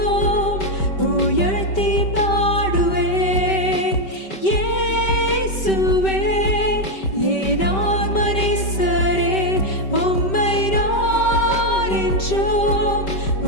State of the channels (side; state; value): right; late; 5.2 ms